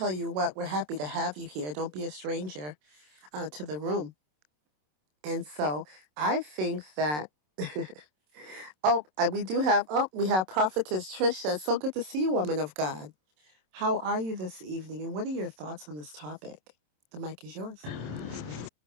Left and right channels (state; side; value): late; left; 27 ms